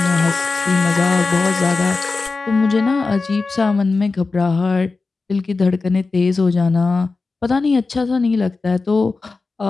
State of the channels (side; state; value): right; quieter; 3.9 dB